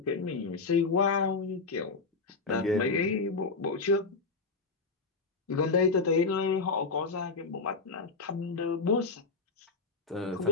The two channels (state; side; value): quieter; right; 4.2 dB